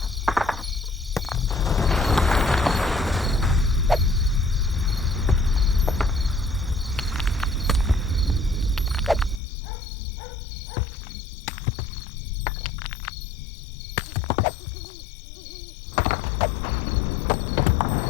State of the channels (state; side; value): drops out; right; at 9.4 s